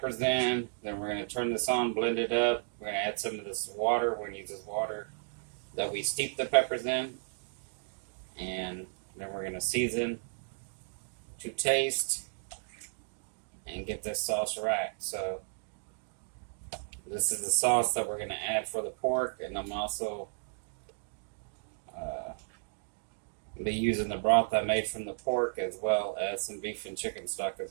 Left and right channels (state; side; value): silent; left; digital silence